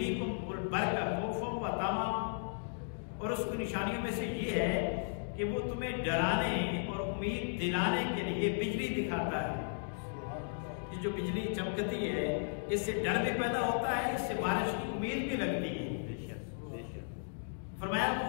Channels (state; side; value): silent; right; digital silence